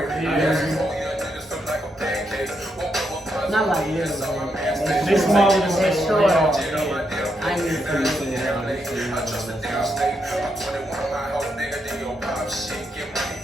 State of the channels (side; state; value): both; normal; correlation 0.80